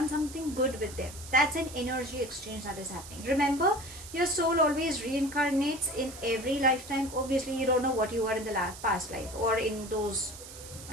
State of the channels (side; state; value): right; noise; hiss, 14 dB below the sound